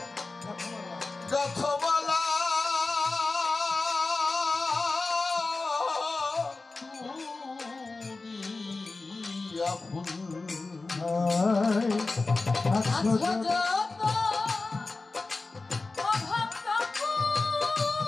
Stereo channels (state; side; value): quieter; right; 3.6 dB